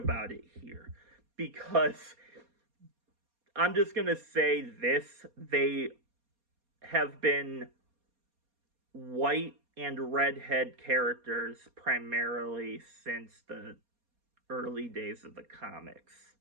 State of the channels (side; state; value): left; late; 4.2 ms